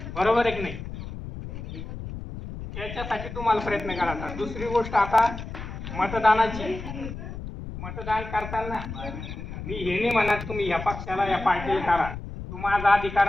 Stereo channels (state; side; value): noise; left; rumble, 9 dB below the sound